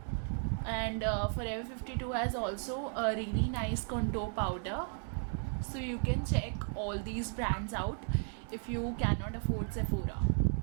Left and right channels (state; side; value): silent; left; 55 dB below the other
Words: and Forever 52 has also a really nice contour powder. So you can check all these brands out if you cannot afford Sephora.